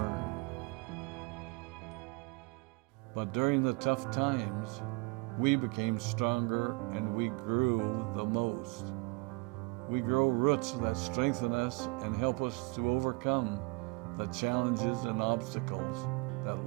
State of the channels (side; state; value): left; quieter; 28.8 dB